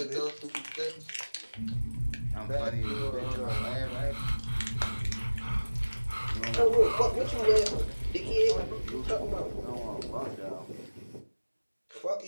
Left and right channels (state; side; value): inverted; both; correlation -1.00